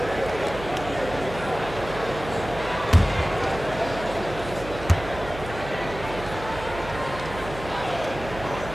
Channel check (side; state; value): right; noise; hum, 11 dB below the sound